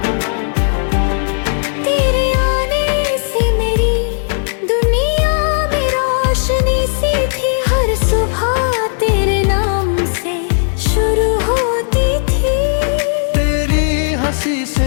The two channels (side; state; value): right; silent; digital silence